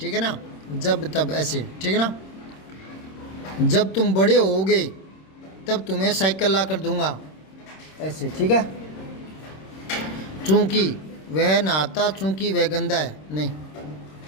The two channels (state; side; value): late; right; 26 ms